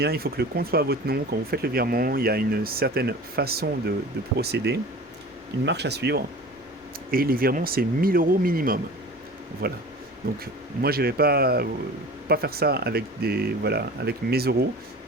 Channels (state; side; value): normal; both; correlation 0.39